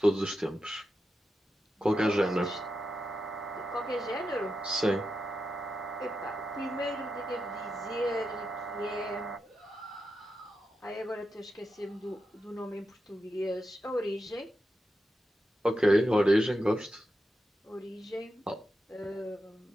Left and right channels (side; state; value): both; normal; correlation 0.88